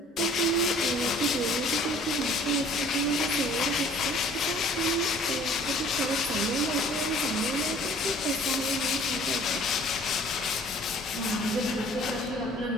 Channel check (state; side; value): normal; both; correlation 0.53